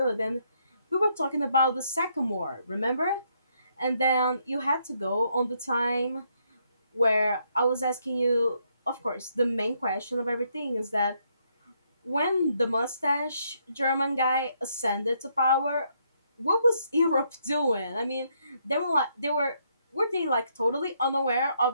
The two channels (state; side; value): inverted; both; correlation -0.74